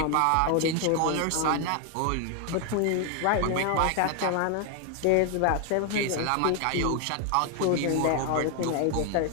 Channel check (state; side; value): different; both; correlation 0.01